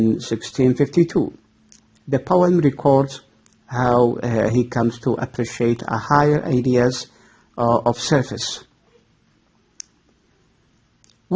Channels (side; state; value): both; identical; correlation 1.00